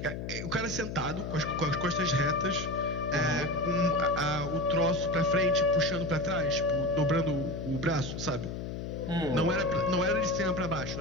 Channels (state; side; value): noise; left; hum, 6 dB below the sound